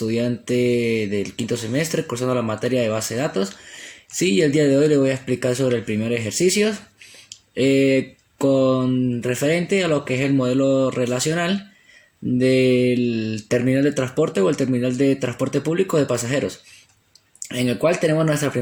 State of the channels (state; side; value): identical; both; correlation 1.00